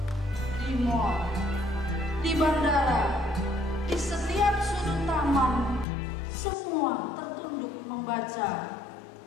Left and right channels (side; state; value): right; drops out; at 5.9 s